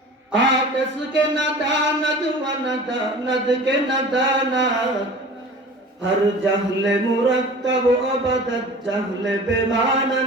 আকাশ কে না দানাত ওয়ানা দানাত কে না দানাত, হর জাহলে মুরাক্কাব আবাদাত জাহলে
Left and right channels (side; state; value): both; normal; correlation 0.41